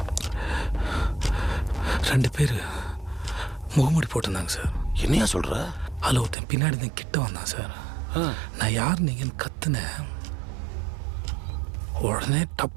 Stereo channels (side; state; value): left; drops out; at 6.4 s